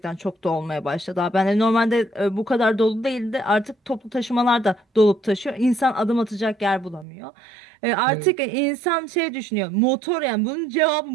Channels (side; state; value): left; drops out; at 7.1 s